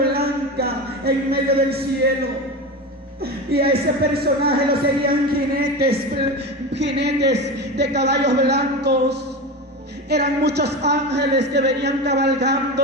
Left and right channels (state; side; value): normal; both; correlation 0.24